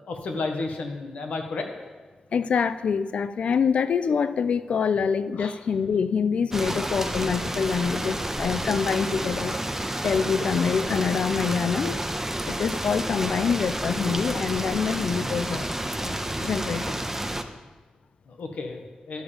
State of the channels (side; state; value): right; quieter; 4.0 dB